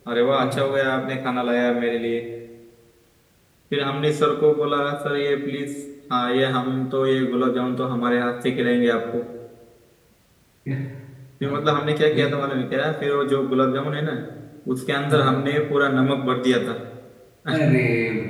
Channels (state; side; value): identical; both; correlation 1.00